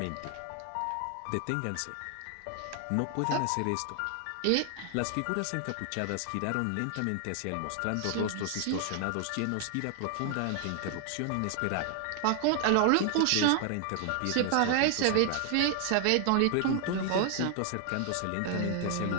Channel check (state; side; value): different; both; correlation 0.00